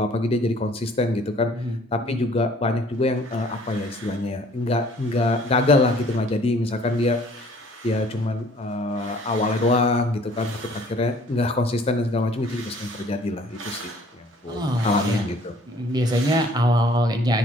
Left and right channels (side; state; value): both; normal; correlation 0.55